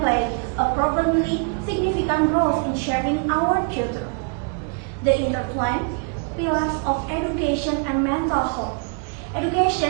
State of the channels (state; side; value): quieter; left; 38.3 dB